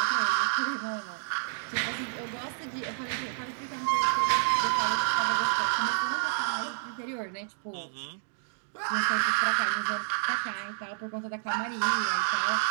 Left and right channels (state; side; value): silent; left; digital silence